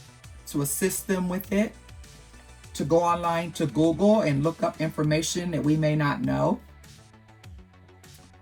to assist them with it, to go online to Google and look up information that we may not know,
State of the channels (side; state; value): both; identical; correlation 1.00